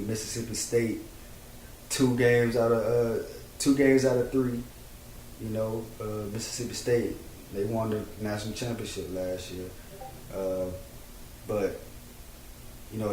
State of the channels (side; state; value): both; identical; correlation 1.00